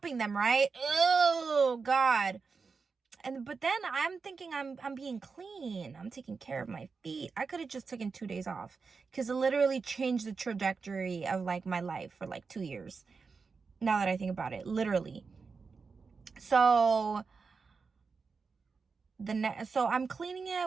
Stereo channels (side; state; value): left; quieter; 4.9 dB